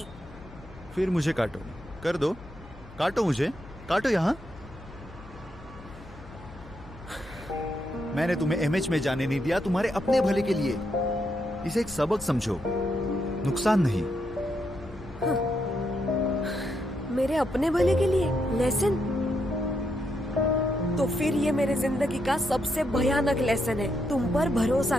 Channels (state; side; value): normal; both; correlation 0.80